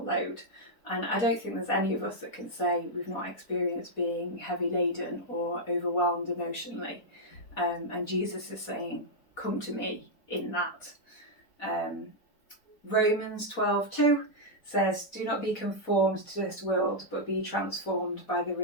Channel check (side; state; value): right; late; 4.2 ms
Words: load. And I don't think there's any of us that can say we've not experienced being heavy laden or overwhelmed emotionally. And Jesus is saying, "Come to me in that." Romans 12:2 says, "Do not be conformed to this world, but be transformed by the